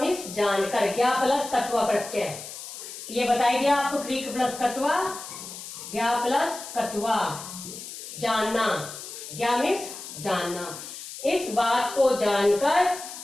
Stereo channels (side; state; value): left; noise; hiss, 11 dB below the sound